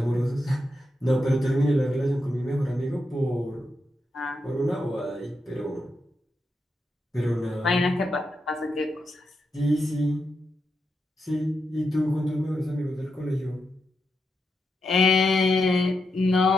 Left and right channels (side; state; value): both; normal; correlation 0.85